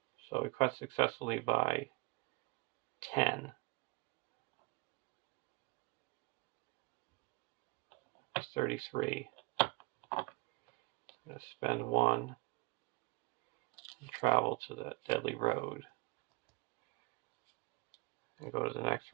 So we quest successfully by 10. That's 33. I'm going to spend 1 and travel to the Deadly Road and go to the next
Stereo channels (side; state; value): left; quieter; 24.7 dB